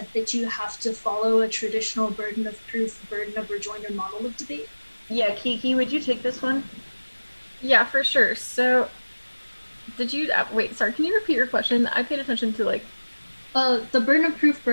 that you have to follow a traditional burden of proof, burden of rejoinder model of debate? Yeah, Kiki, would you take this one? Yeah, for sure. So, did you wait? Sorry, can you repeat your question? I paid attention to like. The burden of proof,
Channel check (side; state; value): both; inverted; correlation -1.00